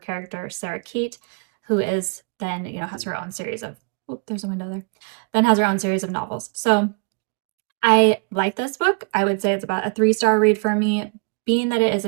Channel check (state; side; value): quieter; left; 34.7 dB